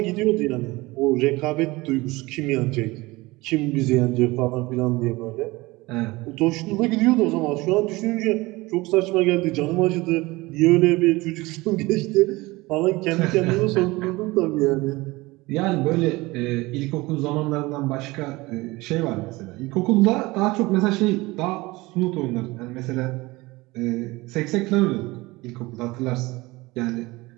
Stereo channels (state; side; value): quieter; left; 21.5 dB